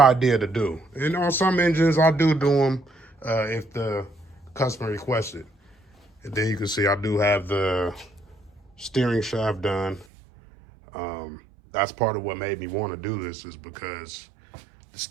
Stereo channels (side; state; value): left; drops out; at 10.1 s